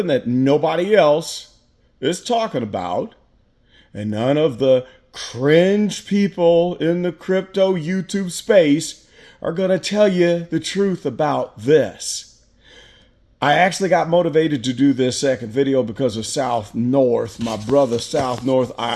that nobody else is talking about. And none of the cringe people in the crypto YouTube space are going to tell you the truth about this. I actually got motivated to do this second video because of South North, my brother South North.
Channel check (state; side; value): identical; both; correlation 1.00